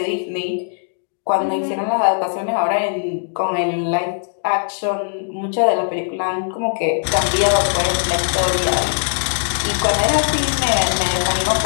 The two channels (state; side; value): silent; right; digital silence